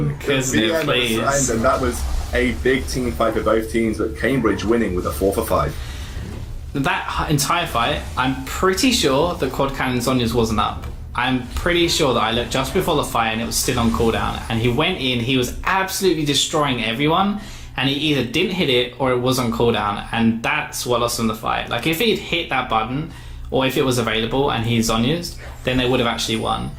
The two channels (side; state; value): both; identical; correlation 1.00